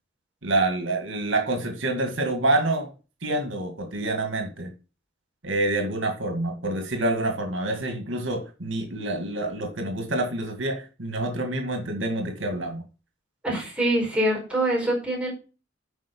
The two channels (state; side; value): normal; both; correlation 0.03